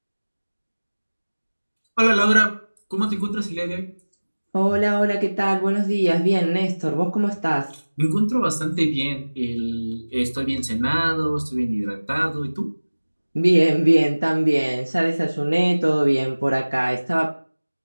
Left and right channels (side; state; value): both; inverted; correlation -1.00